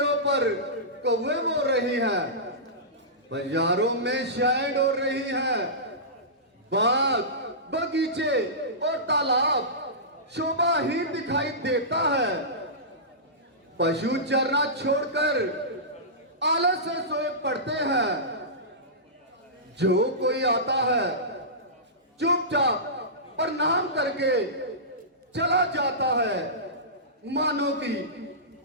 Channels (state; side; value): normal; both; correlation -0.19